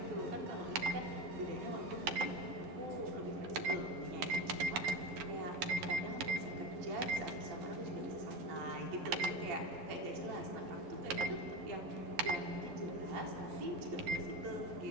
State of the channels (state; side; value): late; left; 11 ms